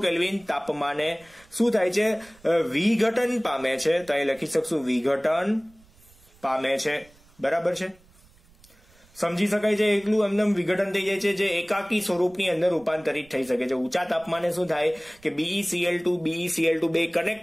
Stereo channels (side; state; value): right; noise; rumble, 28 dB below the sound